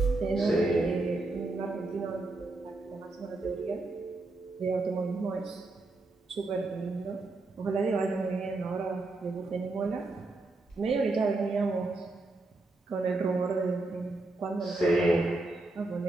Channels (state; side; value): quieter; left; 3.1 dB